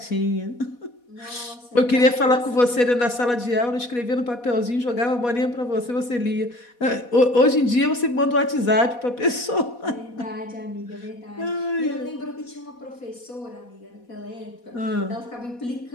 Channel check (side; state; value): right; late; 4.1 ms